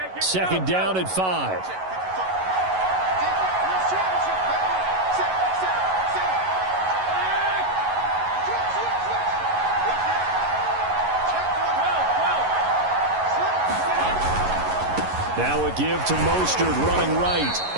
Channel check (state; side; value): late; left; 11 ms